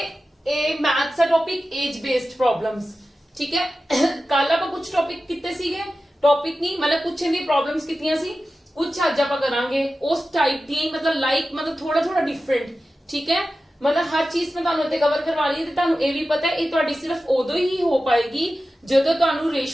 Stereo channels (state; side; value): normal; both; correlation 0.94